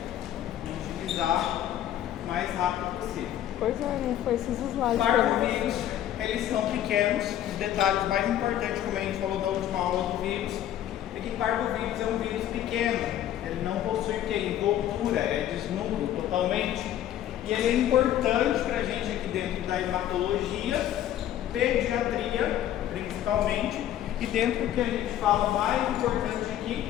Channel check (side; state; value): right; quieter; 11.7 dB